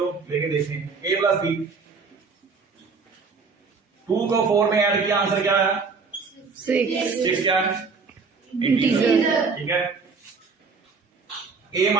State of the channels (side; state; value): left; quieter; 4.8 dB